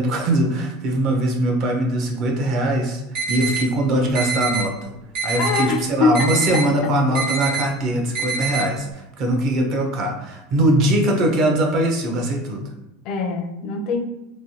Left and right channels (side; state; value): both; normal; correlation 0.43